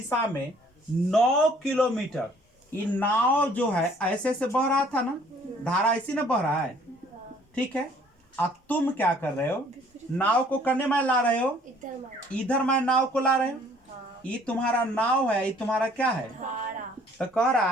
में 9 किलोमीटर। ये नाव जो है ऐसे से बह रहा था ना, धारा ऐसी ना बह रहा है, ठीक है। अब तुम क्या कर रहे हो? नाव को करने में ला रहे हो, इधर मैं नाव को ला रहे हो। ये तुम्हारा नाव है, ये तुम्हारा क्या है? तो कह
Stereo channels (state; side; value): normal; both; correlation 0.58